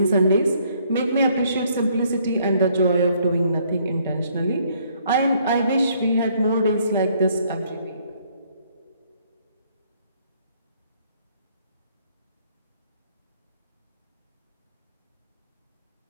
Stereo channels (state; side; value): inverted; both; correlation -0.66